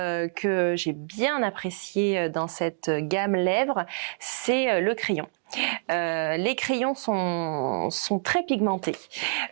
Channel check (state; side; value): silent; left; digital silence